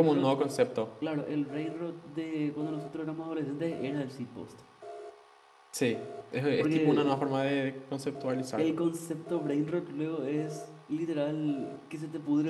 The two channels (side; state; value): both; identical; correlation 1.00